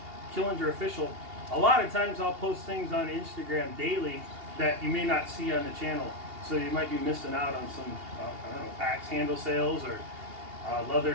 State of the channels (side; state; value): left; late; 2.8 ms